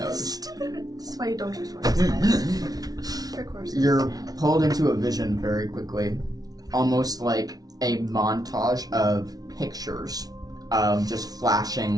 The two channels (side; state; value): left; late; 0.18 ms